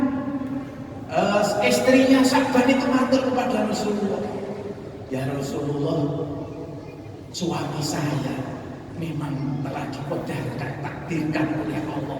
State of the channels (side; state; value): both; identical; correlation 1.00